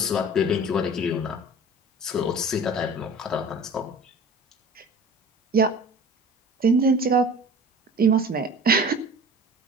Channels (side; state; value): both; normal; correlation 0.41